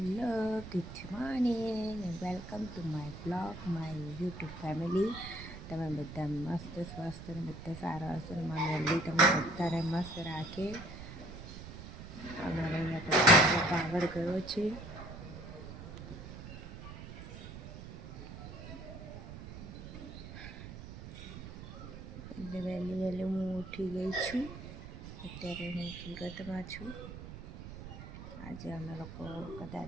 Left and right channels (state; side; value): noise; right; rumble, 11 dB below the sound